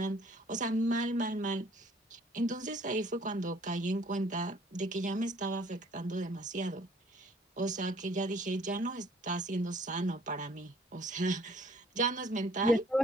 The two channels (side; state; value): both; normal; correlation 0.57